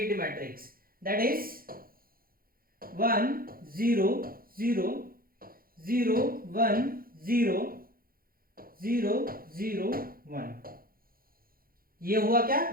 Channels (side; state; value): left; late; 0.42 ms